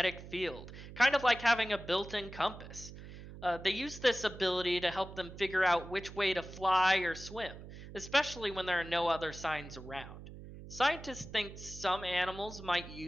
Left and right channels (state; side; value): noise; right; hum, 14 dB below the sound